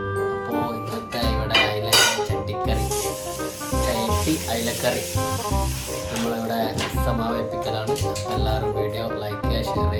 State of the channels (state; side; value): identical; both; correlation 1.00